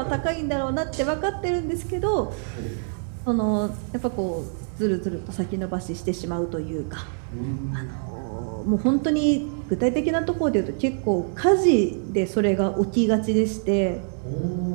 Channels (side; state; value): left; silent; digital silence